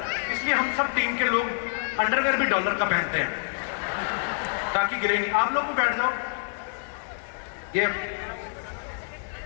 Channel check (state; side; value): silent; right; 56 dB below the other